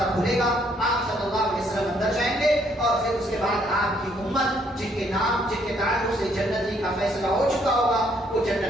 کھلے گا، آپ صلی اللہ علیہ وسلم اندر جائیں گے، اور پھر اس کے بعد آپ کی امت جن کے نام جن کے تعلق سے جنتی کا فیصلہ ہو چکا ہوگا وہ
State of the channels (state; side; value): normal; both; correlation 0.68